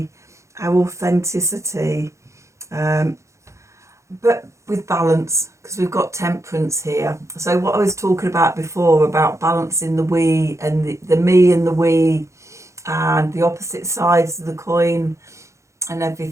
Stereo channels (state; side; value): late; left; 0.14 ms